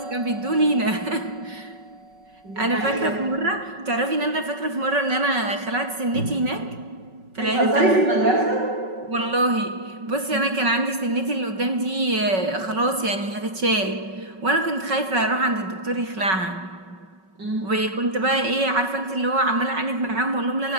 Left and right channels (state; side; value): late; left; 5.3 ms